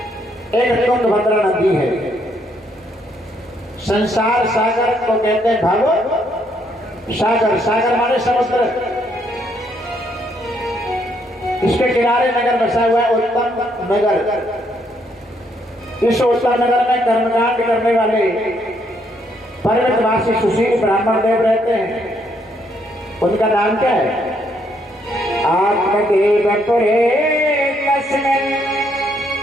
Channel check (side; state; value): both; normal; correlation 0.72